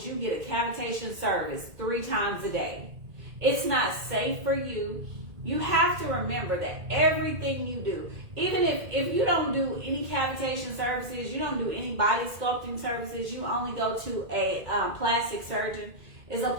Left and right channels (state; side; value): late; left; 2.2 ms